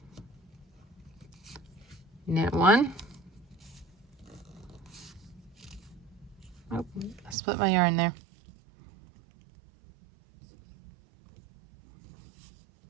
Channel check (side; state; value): left; drops out; at 7.4 s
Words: knit 1. Oh, I split my yarn there.